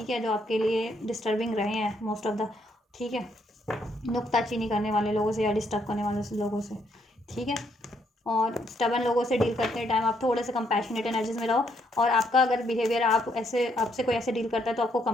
है, जो आपके लिए डिस्टर्बिंग रहे हैं मोस्ट ऑफ द, ठीक है। नुक्ताचीनी करने वाले लोगों से या डिस्टर्ब करने वाले लोगों से, ठीक है। और स्टबन लोगों से डील करते टाइम आप थोड़े से कंपैशनेट एनर्जीज में रहो, और आपका अगर बिहेवियर आपसे कोई ऐसे डील करता है तो आपको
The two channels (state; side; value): normal; both; correlation 0.73